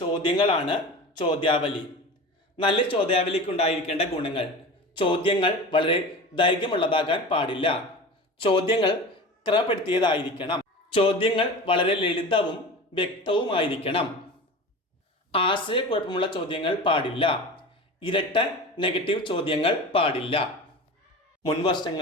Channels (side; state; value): both; normal; correlation 0.32